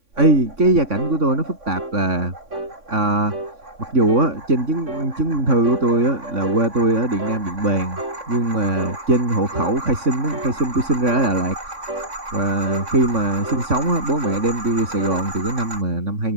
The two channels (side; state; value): left; late; 3.6 ms